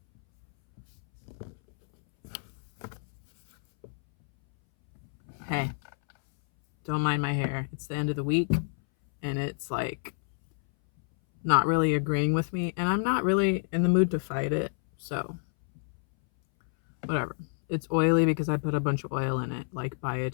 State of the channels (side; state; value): right; silent; 59 dB below the other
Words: Hey, don't mind my hair. It's the end of the week and it's like not really agreeing with me, and I'm not really in the mood to fight it, so whatever. It's oily because I put a bunch of oil in it, like